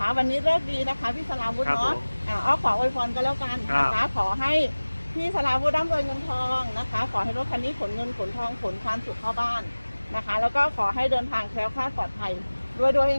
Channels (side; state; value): both; inverted; correlation -1.00